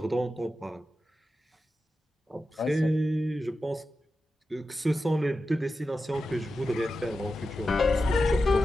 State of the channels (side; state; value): both; normal; correlation 0.91